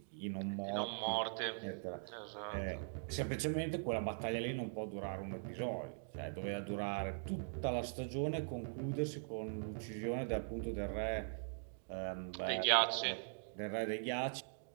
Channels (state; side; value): silent; left; digital silence